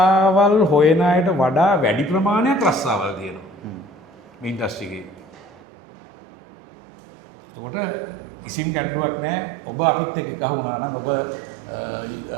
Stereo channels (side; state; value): left; drops out; at 5.6 s